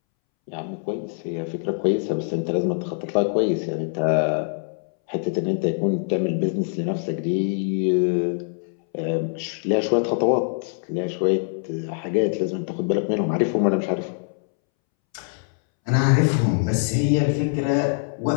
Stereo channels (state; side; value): silent; right; 63 dB below the other